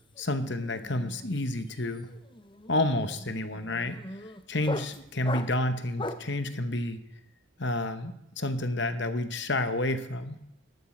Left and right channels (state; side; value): normal; both; correlation 0.36